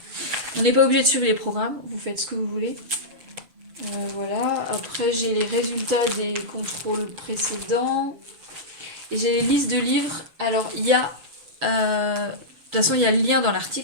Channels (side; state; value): left; late; 6.8 ms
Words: on n'est pas obligé de suivre les programmes. Vous faites ce que vous voulez. Voilà. Après, j'ai les résultats des contrôles précédents. Et j'ai les listes de livres. Alors, il y a... de toute façon, il y a le lien dans